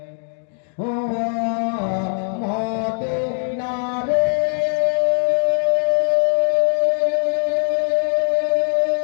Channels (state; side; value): silent; right; 58 dB below the other